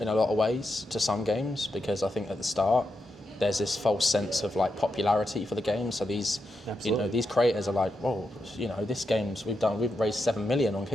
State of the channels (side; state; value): both; normal; correlation 0.85